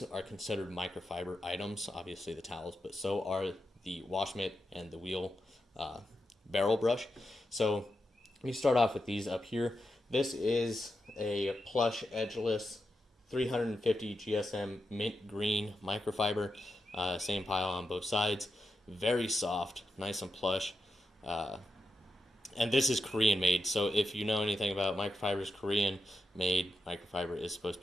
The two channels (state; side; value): normal; both; correlation 0.88